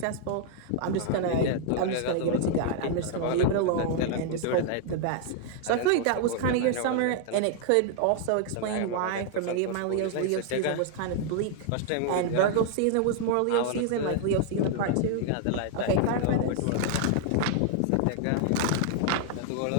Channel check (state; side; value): different; both; correlation 0.00